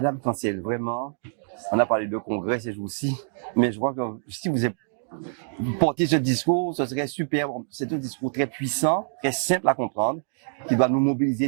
Cancel, vraiment, on a parlé de congrès ces jours-ci, mais je crois que si vous portez ce discours, ce serait super. C'est un discours très puissant, très simple à comprendre, qui doit nous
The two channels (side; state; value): left; silent; digital silence